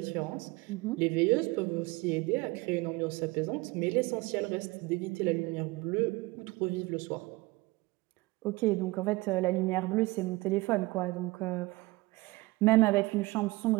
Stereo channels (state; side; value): quieter; left; 22.0 dB